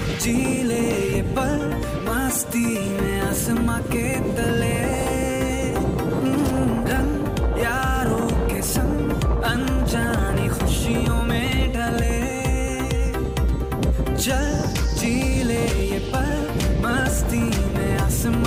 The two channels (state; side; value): identical; both; correlation 1.00